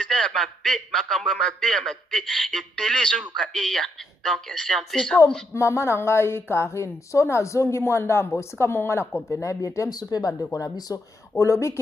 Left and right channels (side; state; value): both; normal; correlation 0.78